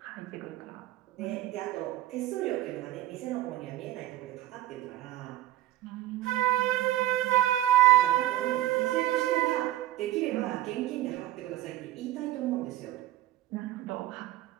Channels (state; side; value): quieter; left; 15.3 dB